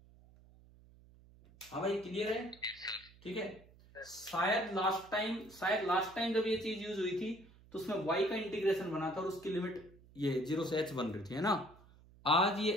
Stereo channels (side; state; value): right; noise; hum, 24 dB below the sound